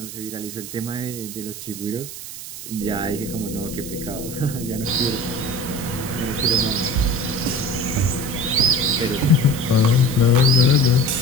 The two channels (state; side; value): noise; right; hiss, 11 dB below the sound